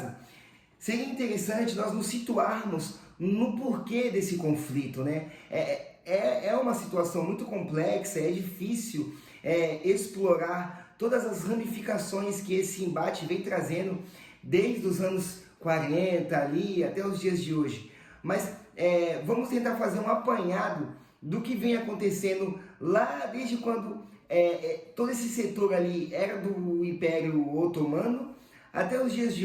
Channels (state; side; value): identical; both; correlation 1.00